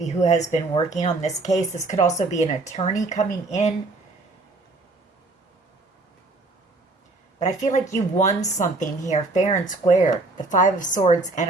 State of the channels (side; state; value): left; quieter; 3.2 dB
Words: who has been working on this case. This could also be an attorney coming in. But I feel like you won something here, fair and square. The Five of Swords